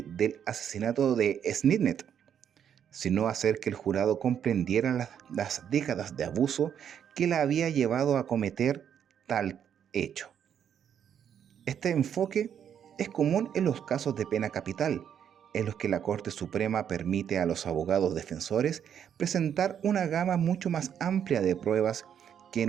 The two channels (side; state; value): left; quieter; 8.7 dB